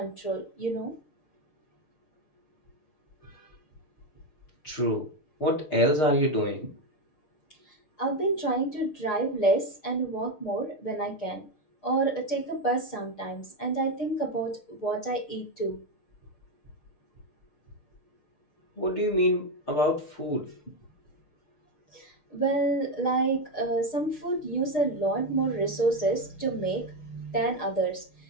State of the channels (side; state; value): right; late; 6.6 ms